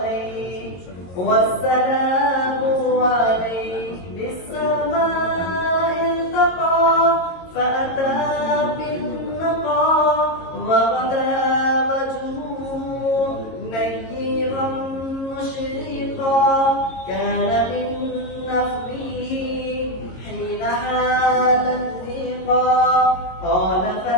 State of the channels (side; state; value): right; late; 22 ms